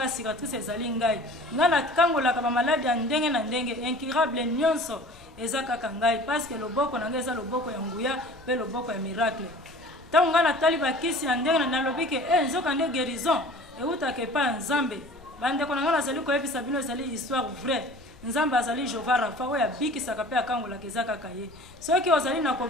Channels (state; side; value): noise; left; rumble, 24 dB below the sound